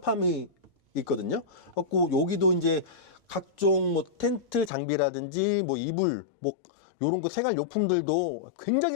있거든요. 그래갖고 여기도 이제 각종 뭐 텐트 장비라든지 뭐 이불 뭐 요런 거 생활 용품들도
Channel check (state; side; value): drops out; right; at 4.7 s